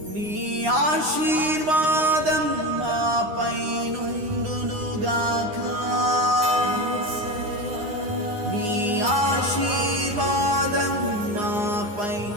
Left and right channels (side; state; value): left; late; 9.7 ms